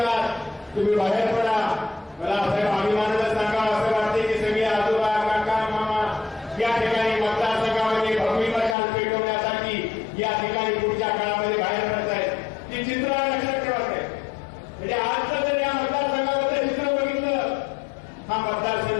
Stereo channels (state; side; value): drops out; right; at 8.8 s